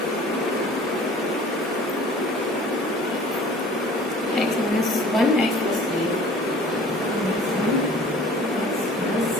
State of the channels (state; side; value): normal; both; correlation 0.47